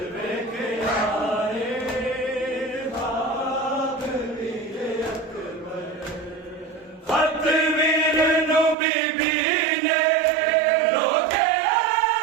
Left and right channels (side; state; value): left; drops out; at 8.8 s